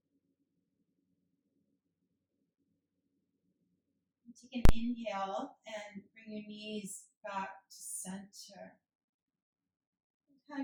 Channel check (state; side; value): identical; both; correlation 1.00